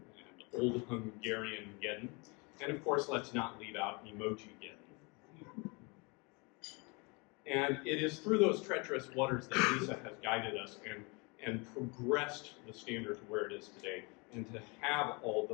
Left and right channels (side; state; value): right; quieter; 29.6 dB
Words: and Old Hungarian Geddon, and of course, let's not leave out Emoji Geddon. And it is through those treacherous waters that Lisa has guided us and progressed the standard to where it is today, and to have all